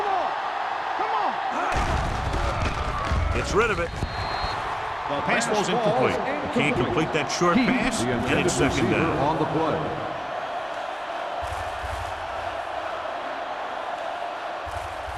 on. Come on. Gets rid of it. The pass ball's incomplete. Can't complete that short pass, and it's second down. On the play.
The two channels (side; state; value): both; identical; correlation 1.00